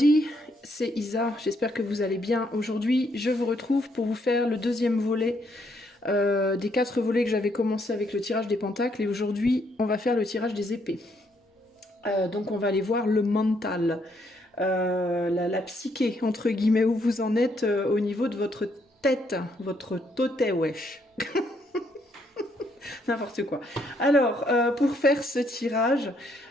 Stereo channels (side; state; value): both; normal; correlation 0.72